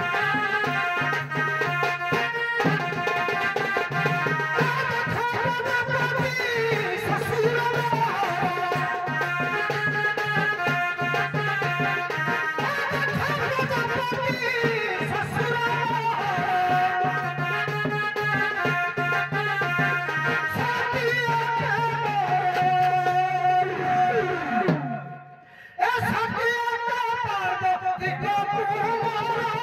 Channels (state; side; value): identical; both; correlation 1.00